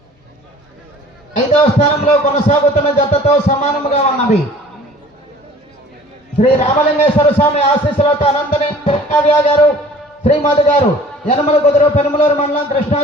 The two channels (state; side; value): normal; both; correlation 0.49